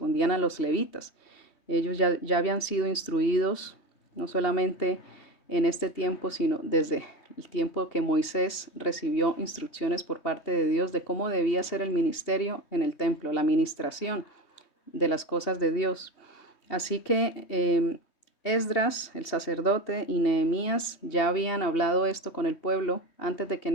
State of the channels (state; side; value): late; right; 3.2 ms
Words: a los levitas. Ellos ya habían sido instruidos, no solamente en este tiempo, sino desde el tiempo que Moisés recibió instrucciones por parte de Dios de cómo debía ser el ministerio en el templo, la administración de las cosas de Dios. Así que Esdras, el sacerdote, y Nehemías ya habían hablado esto con el pueblo antes de que